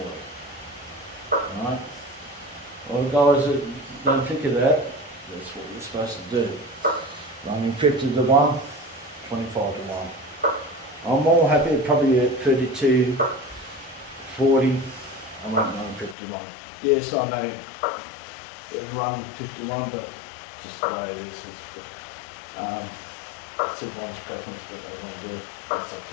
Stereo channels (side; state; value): right; drops out; at 16.2 s